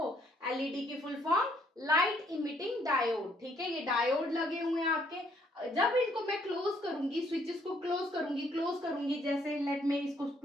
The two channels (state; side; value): normal; both; correlation 0.68